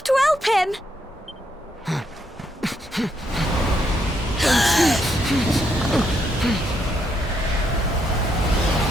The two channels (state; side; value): normal; both; correlation 0.76